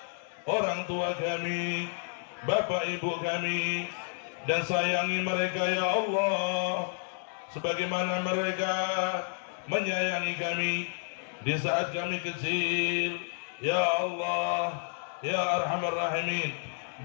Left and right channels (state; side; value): silent; right; digital silence